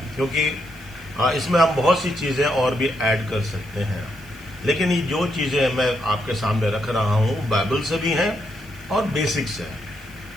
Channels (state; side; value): noise; right; hiss, 24 dB below the sound